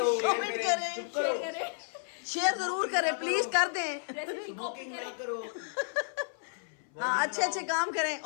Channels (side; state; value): right; silent; 56 dB below the other